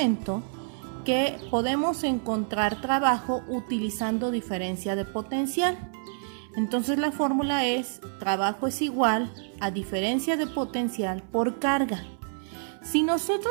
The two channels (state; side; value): silent; left; 60 dB below the other